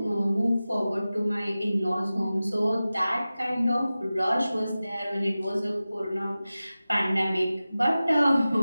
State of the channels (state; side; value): inverted; both; correlation -0.96